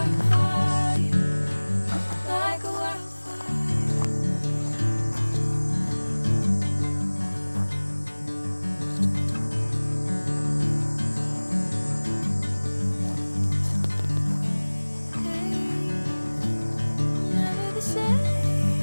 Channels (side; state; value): both; inverted; correlation -1.00